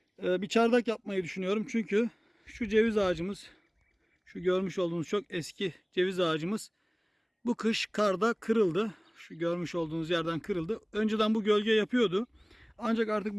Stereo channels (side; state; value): both; identical; correlation 1.00